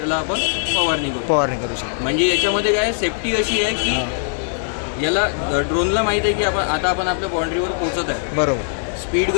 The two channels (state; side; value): silent; right; digital silence